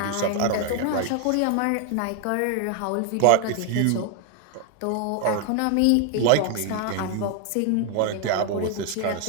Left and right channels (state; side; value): different; both; correlation 0.00